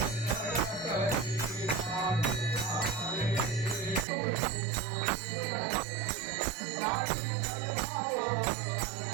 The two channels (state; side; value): drops out; left; at 4.0 s